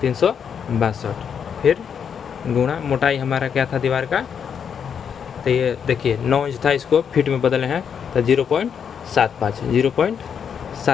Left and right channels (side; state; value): right; quieter; 7.4 dB